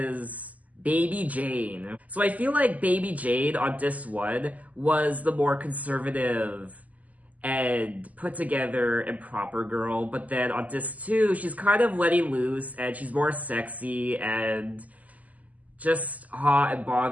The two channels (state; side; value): late; left; 0.076 ms